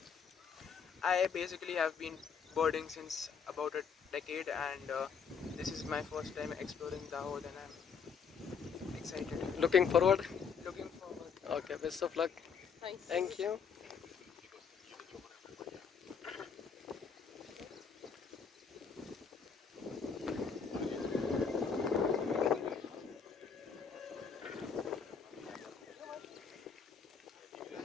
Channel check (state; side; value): quieter; right; 6.4 dB